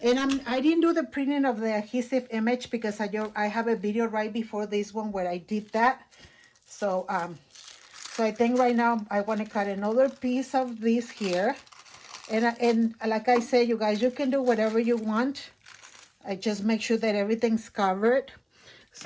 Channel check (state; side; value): identical; both; correlation 1.00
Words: And I didn't do the printing of the adhesive image because I have a video right before this one where I did that. So so I think right now I want to cut another piece of this here. And like I said, you guys, you can do whatever you want. I just make sure that everything's covered.